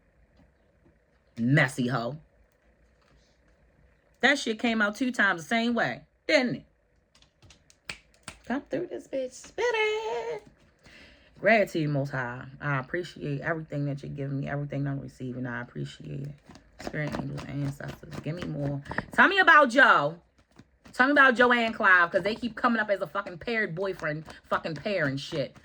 Messy hoe. That shit came out 2 times the same way, didn't it? Come through this bitch. Spit it. Gratitude, Most High. I appreciate everything that you're giving me, everything I'm receiving. I appreciate it. Spirit, angels, ancestors. Give me more. Tell me about Joe. Tell me about Joe and Clive, because they keep coming up as a fucking paired boyfriend, fucking pair and shit.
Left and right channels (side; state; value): both; identical; correlation 1.00